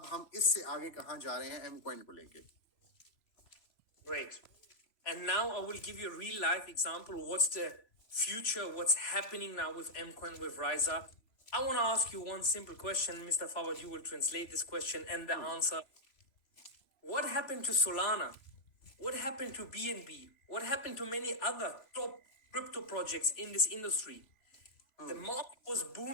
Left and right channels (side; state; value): right; late; 3.0 ms